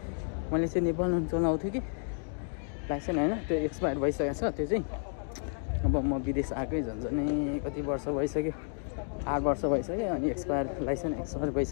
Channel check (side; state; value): right; silent; 57 dB below the other